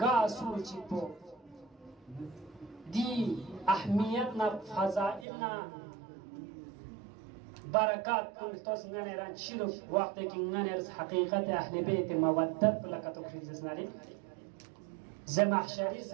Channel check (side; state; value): left; drops out; at 5.2 s